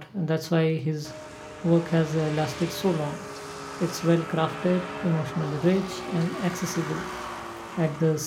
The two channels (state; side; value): identical; both; correlation 1.00